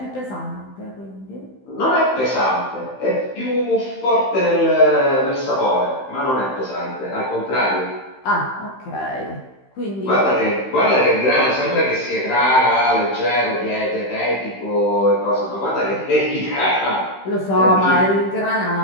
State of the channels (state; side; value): late; right; 15 ms